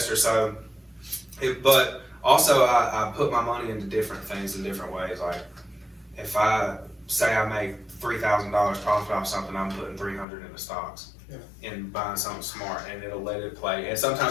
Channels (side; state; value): right; drops out; at 10.2 s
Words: So, but also I put my money into different things in different ways. Like, if I say I make $3,000 profit off something, I'm putting $300 into stocks. And buying something smart, and it'll let it play. And